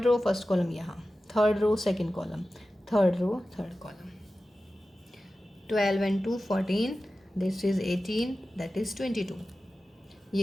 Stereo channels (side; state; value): both; normal; correlation 0.94